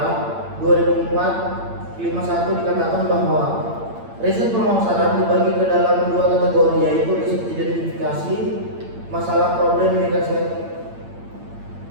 2004-51 dikatakan bahwa riset pemasaran dibagi ke dalam dua kategori, yaitu riset identifikasi masalah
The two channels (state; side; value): late; left; 8.8 ms